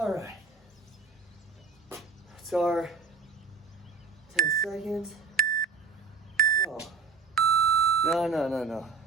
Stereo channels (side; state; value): left; quieter; 5.1 dB